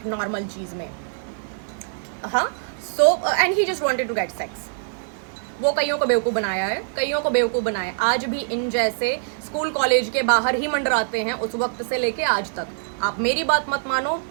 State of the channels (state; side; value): silent; left; digital silence